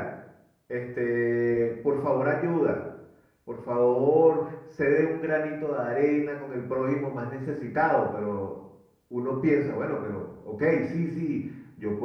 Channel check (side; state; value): both; identical; correlation 1.00